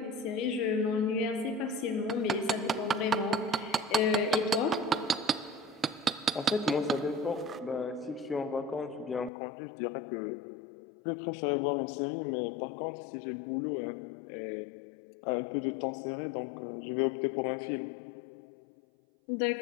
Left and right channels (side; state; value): right; drops out; at 9.3 s